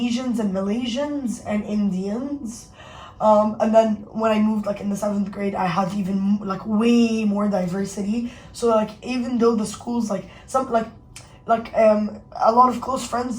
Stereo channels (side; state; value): both; identical; correlation 1.00